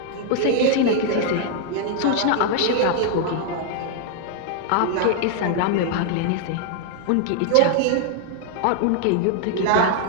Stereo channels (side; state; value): both; different; correlation 0.00